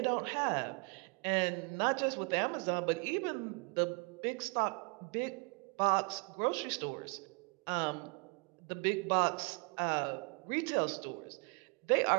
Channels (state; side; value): quieter; left; 34.2 dB